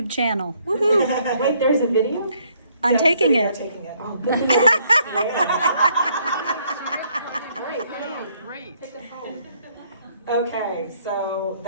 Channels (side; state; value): both; inverted; correlation -0.67